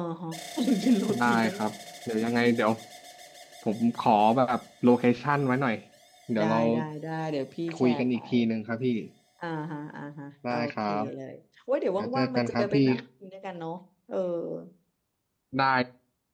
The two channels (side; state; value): both; identical; correlation 1.00